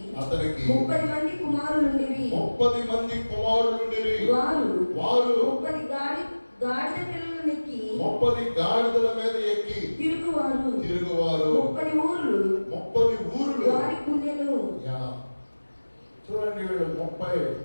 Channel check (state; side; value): inverted; both; correlation -1.00